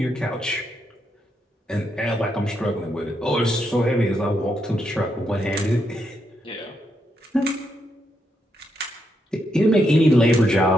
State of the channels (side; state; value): both; normal; correlation 0.80